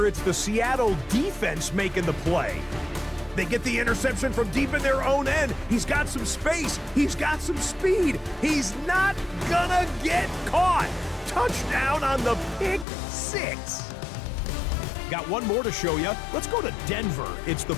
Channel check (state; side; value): drops out; right; at 12.9 s